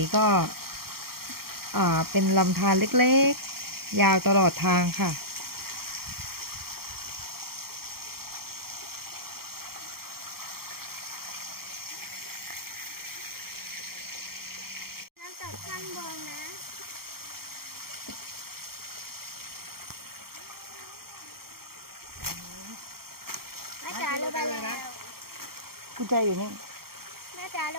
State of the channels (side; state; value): left; late; 0.94 ms